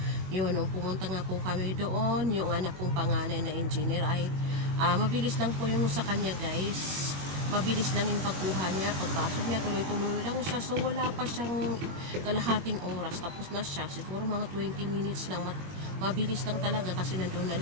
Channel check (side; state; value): left; late; 21 ms